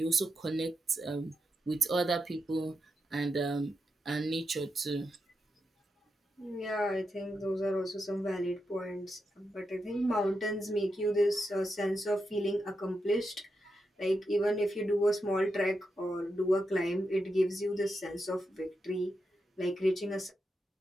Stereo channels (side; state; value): both; normal; correlation 0.86